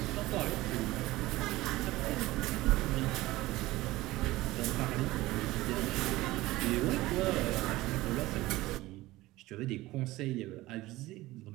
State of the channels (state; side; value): quieter; left; 18.3 dB